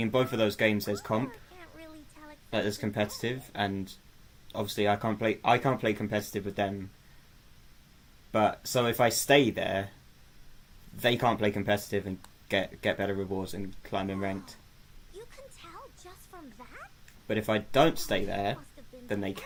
in both of those games there's comp, Can't really tell like exactly there's competitive, and obviously I can't play competitive with them. But so if I stay there, they can't play competitive and get better rewards and climb in ranked. You can tell just from that? But if I don't stay there, then they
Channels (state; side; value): identical; both; correlation 1.00